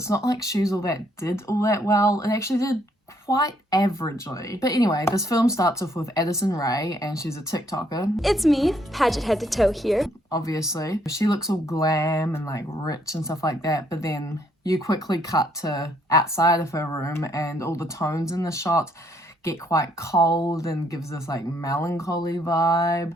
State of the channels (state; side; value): normal; both; correlation 0.69